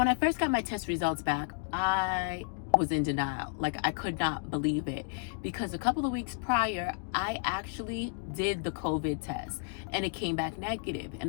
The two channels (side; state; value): right; silent; 57 dB below the other